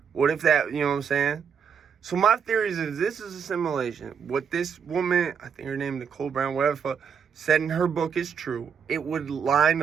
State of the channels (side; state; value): left; quieter; 6.9 dB